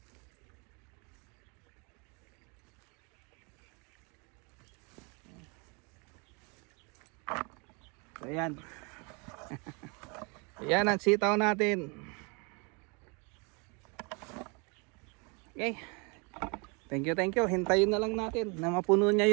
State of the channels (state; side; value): quieter; left; 32.2 dB